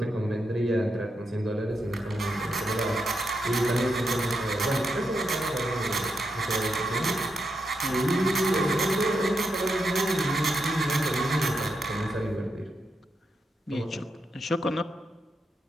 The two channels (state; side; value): normal; both; correlation 0.84